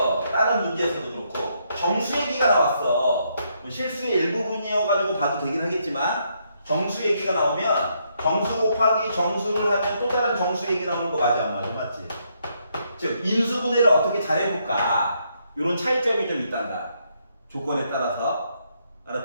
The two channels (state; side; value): inverted; both; correlation -0.75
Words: 다른 문제에서도 그렇고 정수 얘기가 나왔어. 실수의 일부분이어가지고 봐도 되긴 하겠지만 정수 얘기가 나오면 정수 곱하기 정수를 하면 또 다른 정수 얘기 나오는 거 맞아, 안 맞아? 맞지? 즉 인수분해를 어떻게 잘해볼까, 이런 차이점이 좀 있단다, 조건에 따라서.